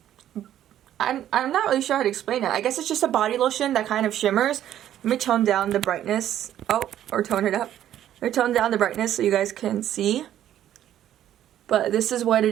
I'm not really sure how to explain it. I guess it's just a body lotion that kind of shimmers. Let me tone down the brightness. Oh, or tone it up. Let me tone down the brightness so you guys can see. But this is what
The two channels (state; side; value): quieter; left; 11.5 dB